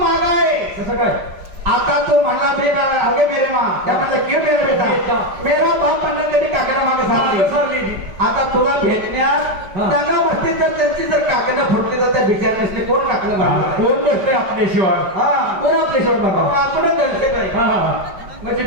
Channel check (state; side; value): late; left; 5.1 ms